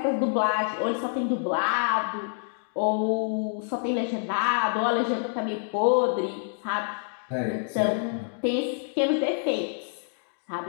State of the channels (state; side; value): silent; right; digital silence